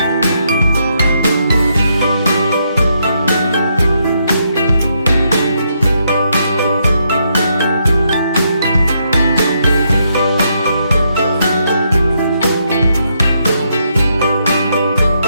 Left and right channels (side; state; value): both; inverted; correlation -0.77